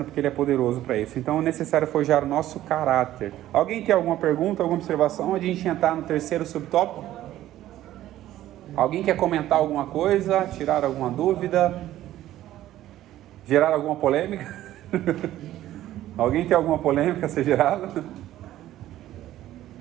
porque Ele é poderoso para isso. Então é necessário forjar o nosso caráter. Alguém tem alguma pergunta, alguma observação? Onde a gente entrar no terceiro subtópico? Alguém quer comentar alguma coisa? Tirar alguma dúvida? Gerar alguma polêmica? Alguém tem alguma polêmica a ser gerada?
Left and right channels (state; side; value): quieter; left; 13.7 dB